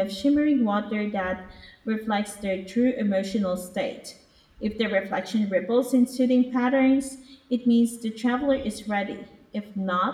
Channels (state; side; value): identical; both; correlation 1.00